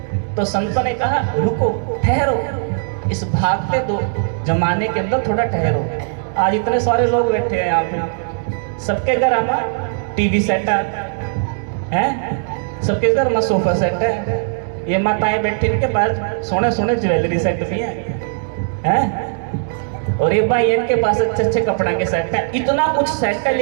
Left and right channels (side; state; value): left; silent; digital silence